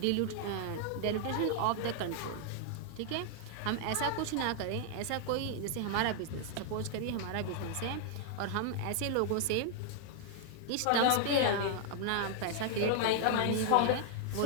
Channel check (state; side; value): different; both; correlation 0.00